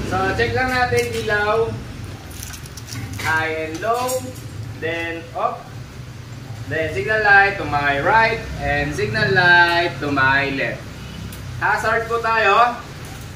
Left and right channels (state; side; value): identical; both; correlation 1.00